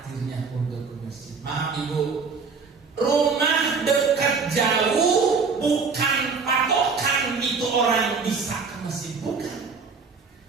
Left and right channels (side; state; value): left; quieter; 5.0 dB